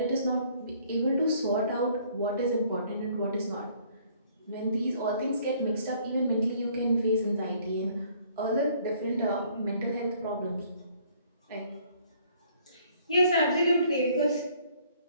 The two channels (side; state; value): both; inverted; correlation -0.61